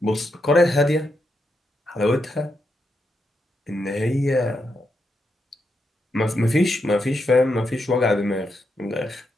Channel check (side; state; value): both; normal; correlation 0.83